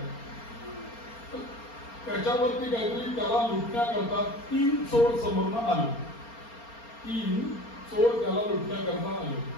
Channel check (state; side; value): late; right; 4.3 ms